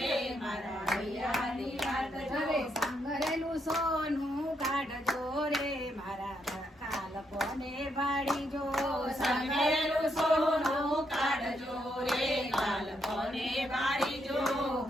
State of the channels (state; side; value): normal; both; correlation 0.78